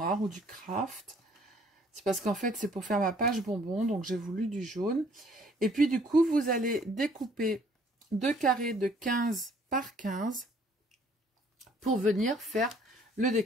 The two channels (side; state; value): both; normal; correlation 0.60